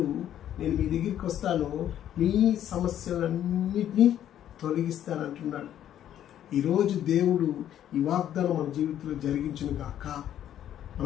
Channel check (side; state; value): right; quieter; 11.0 dB